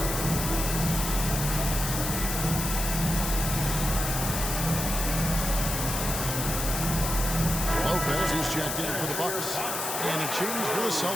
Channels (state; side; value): noise; left; hiss, 3 dB below the sound